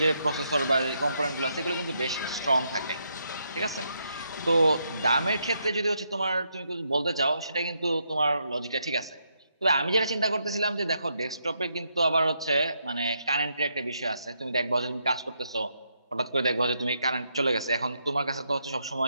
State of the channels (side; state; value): both; inverted; correlation -0.78